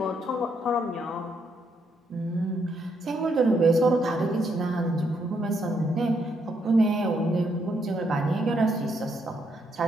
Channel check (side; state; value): both; normal; correlation 0.75